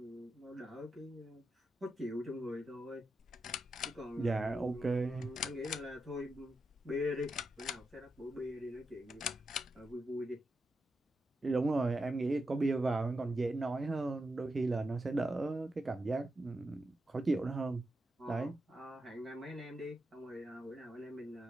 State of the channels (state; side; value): normal; both; correlation 0.87